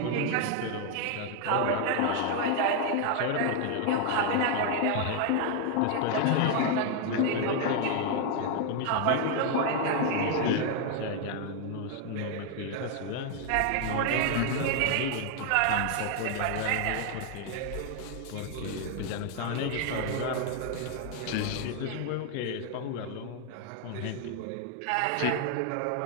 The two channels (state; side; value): different; both; correlation 0.00